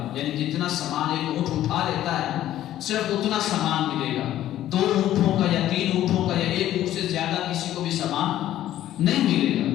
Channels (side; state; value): right; quieter; 12.9 dB